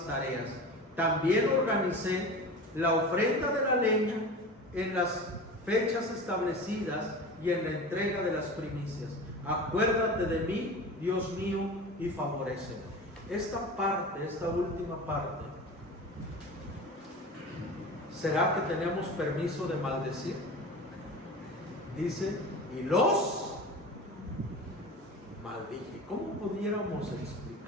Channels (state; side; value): normal; both; correlation 0.33